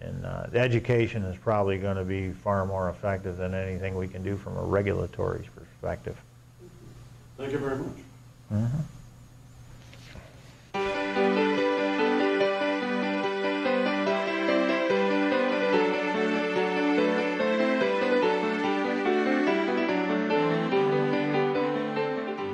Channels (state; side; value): identical; both; correlation 1.00